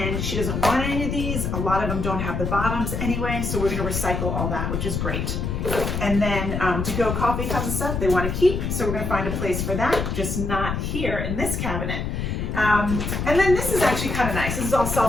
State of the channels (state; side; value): noise; left; rumble, 2 dB below the sound